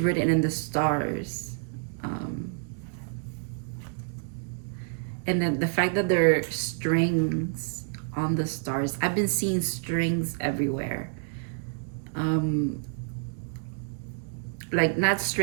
in the stars. And then the fact that there are strings on the stars. I've been seeing strings everywhere. Like not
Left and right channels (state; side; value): silent; left; digital silence